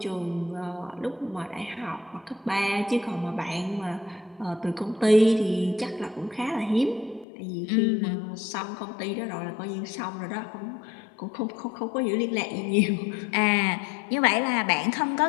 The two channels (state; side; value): drops out; right; at 7.2 s